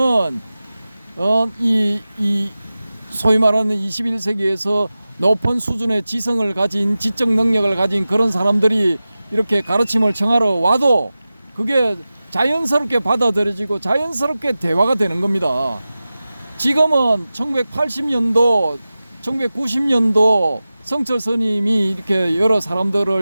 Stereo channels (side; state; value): both; inverted; correlation -0.95